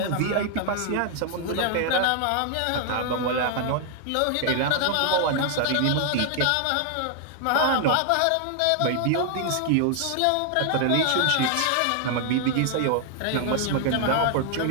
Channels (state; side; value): different; both; correlation 0.00